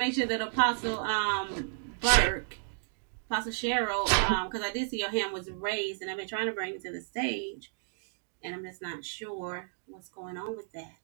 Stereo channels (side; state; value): left; silent; digital silence